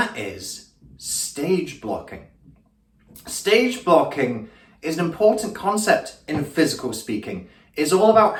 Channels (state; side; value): identical; both; correlation 1.00